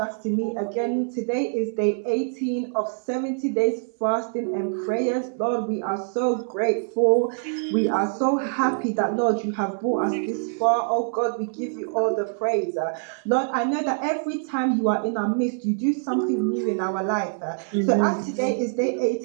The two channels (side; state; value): left; silent; digital silence